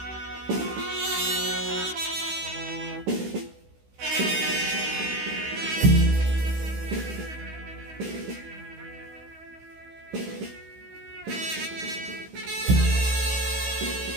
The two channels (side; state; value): left; late; 16 ms